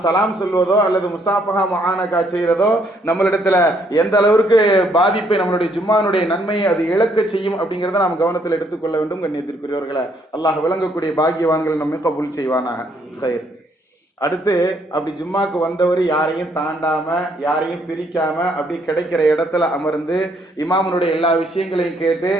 சலாம் சொல்வதோ அல்லது முஸ்தாபஹா முஆனகா செய்யறதோ நம்மளிடத்துல எந்த அளவிற்கு பாதிப்பை, நம்மளுடைய ஜும்மானுடைய நன்மையை அது இழக்க செய்யும் அப்படிங்கறத நாம் கவனத்தில் எடுத்துக்கொள்ள வேண்டும். கண்ணியத்திற்குரியவர்களே, அல்லாஹ் விளங்கக்கூடிய பாக்கியவான்கள் நம்மை கபூல் செய்வானாக. அடுத்து அப்படி ஜும்மாக்கு வந்தவர் யாரையும் தாண்டாம யாரையும் பிரிக்காம அப்படி கிடைக்கிற இடத்துல அமர்ந்து இமாமனுடைய எல்லா விஷயங்களையும் கேட்டு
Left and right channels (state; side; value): normal; both; correlation 0.69